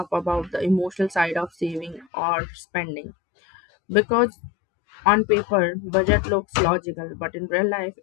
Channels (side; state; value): right; drops out; at 2.1 s